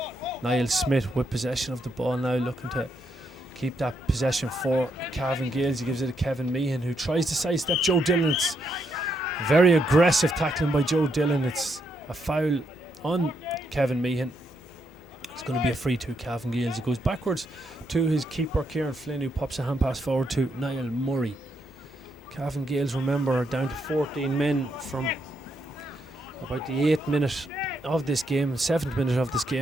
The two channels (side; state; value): both; normal; correlation 0.78